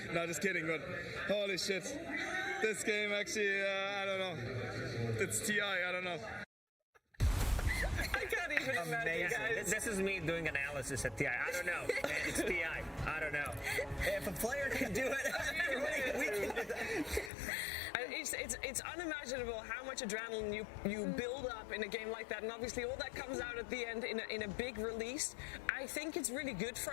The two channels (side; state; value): right; drops out; at 17.3 s